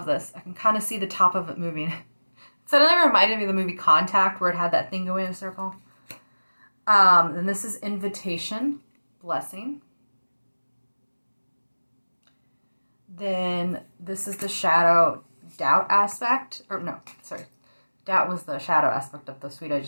this. I can kind of see the top of it moving. It suddenly reminded me of the movie Contact, where it had that thing going in a circle. And this is Invitation. Blessing. Then this is the Shadow Doubt aspect. Or no, sorry. Doubt was the shadow aspect of the suite I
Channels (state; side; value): inverted; both; correlation -1.00